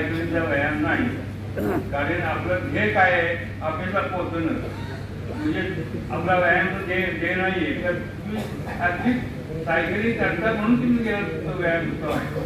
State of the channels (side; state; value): both; identical; correlation 1.00